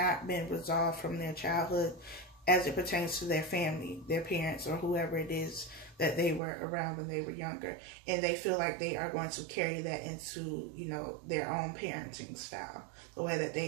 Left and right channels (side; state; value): left; drops out; at 6.4 s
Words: been resolved from their childhood as it pertains to their family, their parents, or whoever it is that they were around when they were younger. And they feel like they are going to carry that into, you know, their own parenting style, the way that they